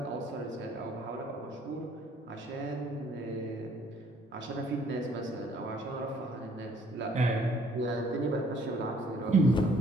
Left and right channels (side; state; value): both; normal; correlation 0.61